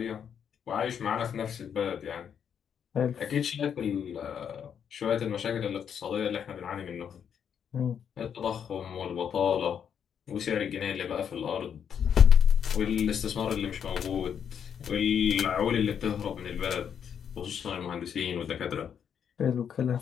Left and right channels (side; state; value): right; quieter; 8.0 dB